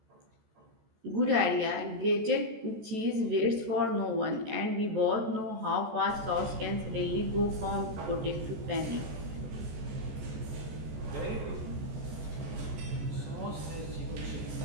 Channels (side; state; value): left; late; 14 ms